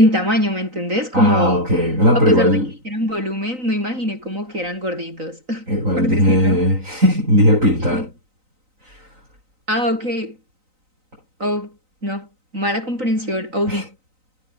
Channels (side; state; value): left; late; 3.9 ms